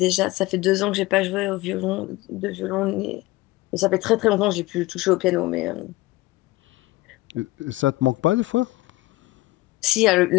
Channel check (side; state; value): right; quieter; 19.6 dB